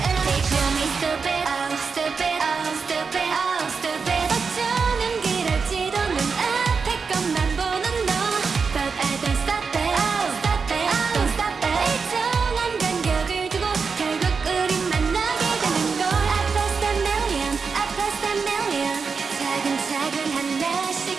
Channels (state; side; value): quieter; left; 5.2 dB